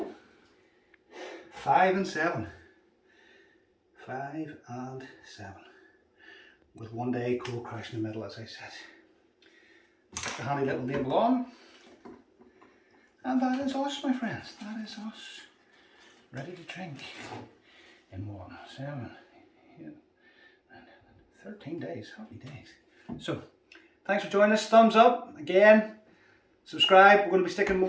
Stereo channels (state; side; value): identical; both; correlation 1.00